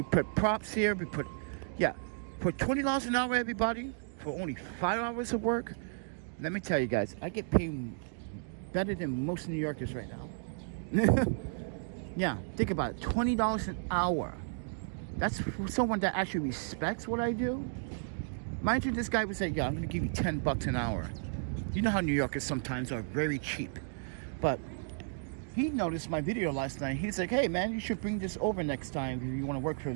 put props here, we put, yeah. For $20 an hour, everybody, for only 5 hours of work, let me tell you guys, I get paid better than most New Yorkers right now. Yeah, think about it, $20 an hour. That's for someone that actually respects what I do. Mind you, this guy would say, yeah, I'm gonna give you $10 an hour. You know how New Yorkers sometimes are very cheap. But he noticed my video last night. He's like, hey man, you should bring this over next time if you wanna work for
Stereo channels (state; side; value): silent; left; digital silence